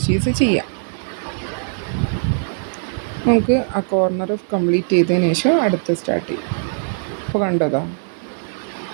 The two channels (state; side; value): silent; left; digital silence